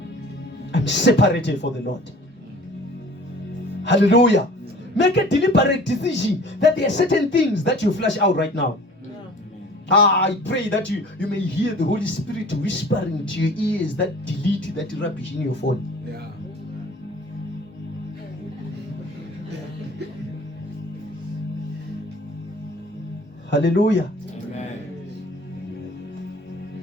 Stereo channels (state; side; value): normal; both; correlation 0.46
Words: I'm separated for the Lord. Hallelujah. Make a deliberate decision that there are certain things that you flash out right now. I pray that you may hear the Holy Spirit whispering to your ears that delete that rubbish in your phone. Yeah. Hallelujah. Amen.